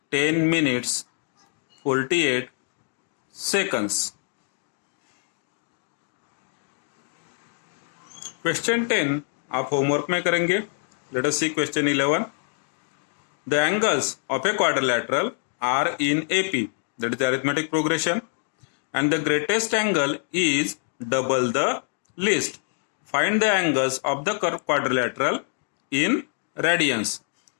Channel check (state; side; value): silent; right; 61 dB below the other